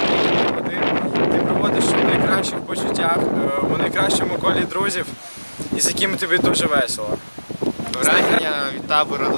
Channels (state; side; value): inverted; both; correlation -1.00